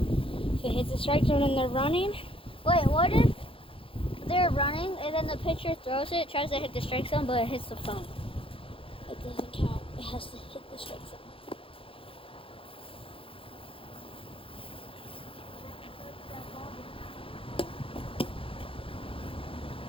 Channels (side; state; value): right; late; 0.26 ms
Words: If it hits the strike zone and they're running, Wait, what if they're running and then the pitcher throws it, tries to hit the strike zone, but it hits the phone? it doesn't count. It has to hit the strike zone.